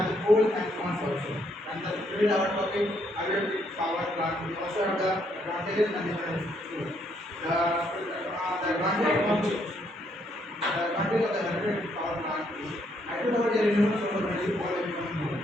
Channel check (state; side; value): normal; both; correlation 0.72